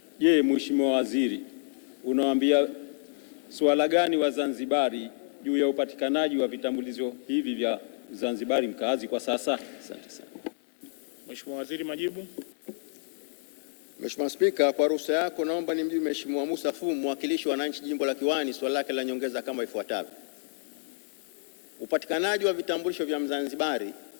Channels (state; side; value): silent; right; 59 dB below the other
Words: je, Mheshimiwa Waziri, unawaambia swala gani Wazanzibari juu ya upatikanaji wa vitambulisho hivi vya Zanzibari mkazi kwa sasa? Asante sana. Mheshimiwa Waziri, majibu. Mheshimiwa Spika, kwa ruhusa yako naomba nimjibu Mheshimiwa Musa Fumu, mwakilishi wa wananchi jimbo la Kiwani, swali lake la nyongeza kama ifuatavyo. Upatikanaji wa vitambulisho vya Mzanzibari